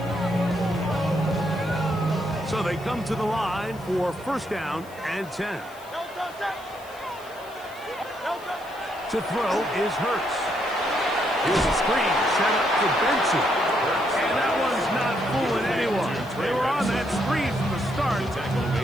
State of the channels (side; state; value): left; noise; hiss, 23 dB below the sound